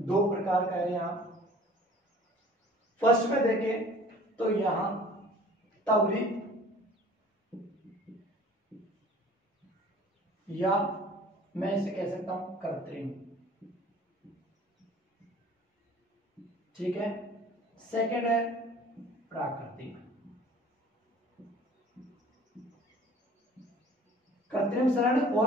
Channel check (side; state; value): both; normal; correlation 0.49